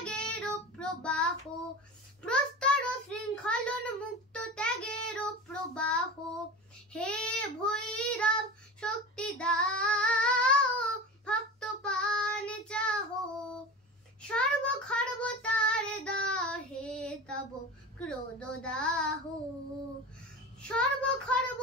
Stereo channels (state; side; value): normal; both; correlation 0.31